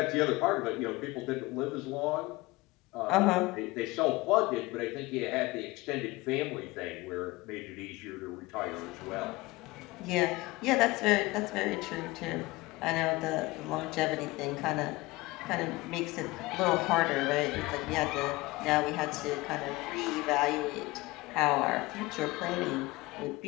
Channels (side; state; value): right; quieter; 21.4 dB